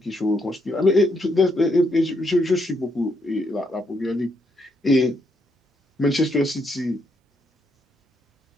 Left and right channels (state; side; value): normal; both; correlation 0.76